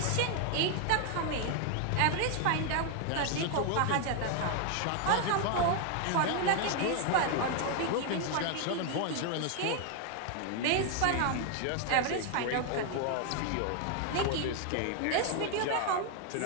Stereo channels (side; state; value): both; different; correlation 0.01